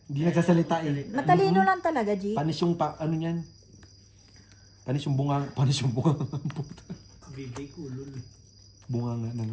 Hindi nagsasalita eh. Matalino lang talaga, G. Panis yung ano niyan. Panis yung bunga. Puta. Bibig ulol. Bunga nga na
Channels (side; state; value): both; identical; correlation 1.00